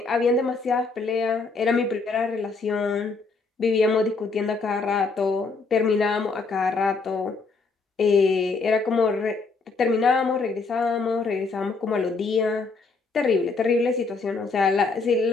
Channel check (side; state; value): right; quieter; 4.1 dB